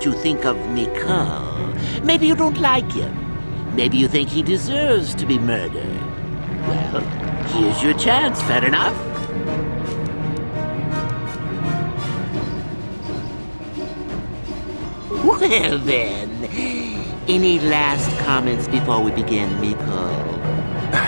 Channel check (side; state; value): both; inverted; correlation -1.00